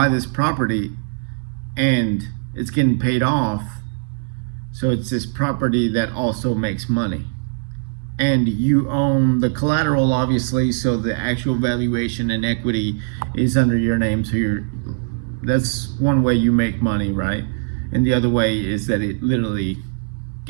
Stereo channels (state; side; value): silent; left; digital silence